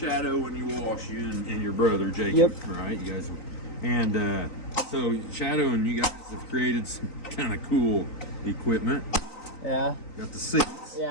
when you wash, you and your brother Jacob, yep. Right? You guys, and so Shadow and you guys have created some kind of cool equipment. Yeah. Got the seats.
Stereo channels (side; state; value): right; late; 3.9 ms